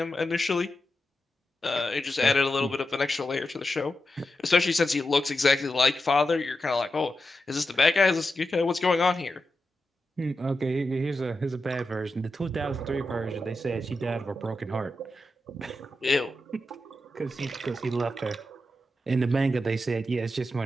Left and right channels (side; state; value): both; normal; correlation 0.89